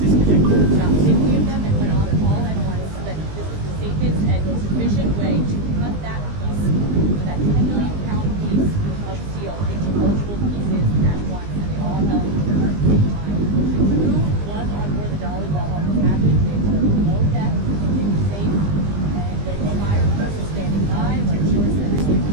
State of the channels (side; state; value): left; late; 20 ms